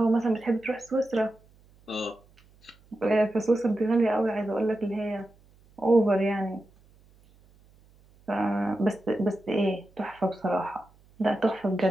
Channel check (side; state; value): right; noise; hum, 29 dB below the sound